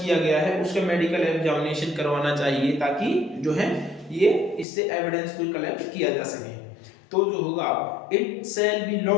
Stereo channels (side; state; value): right; drops out; at 4.7 s